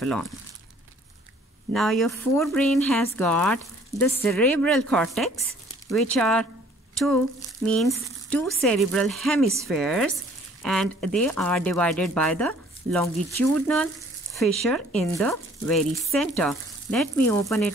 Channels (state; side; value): normal; both; correlation 0.56